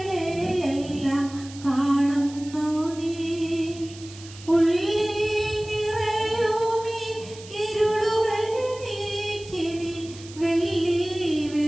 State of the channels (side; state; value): right; noise; hiss, 18 dB below the sound